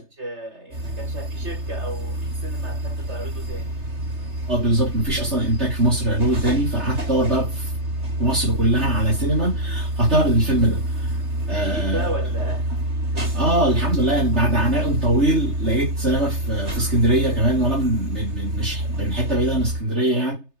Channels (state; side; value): late; left; 3.3 ms